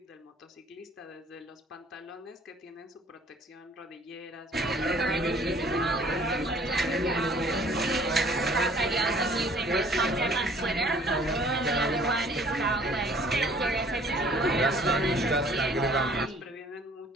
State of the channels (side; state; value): both; normal; correlation 0.55